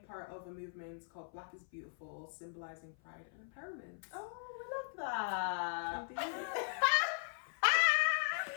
of a movement called Black is Beautiful, symbolizing pride and empowerment. Oh, I love that. Indeed.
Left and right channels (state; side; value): silent; right; 52 dB below the other